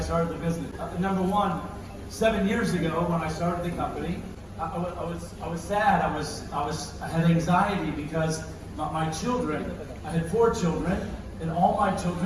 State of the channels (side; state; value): both; identical; correlation 1.00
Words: the business. Number one, 7 years ago when I started the company, I was sad. I had anxiety because my children, I had 4 children, and all my